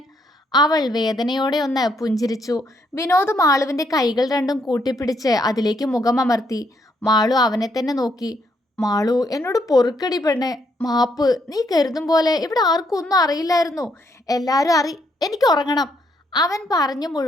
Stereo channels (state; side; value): normal; both; correlation 0.73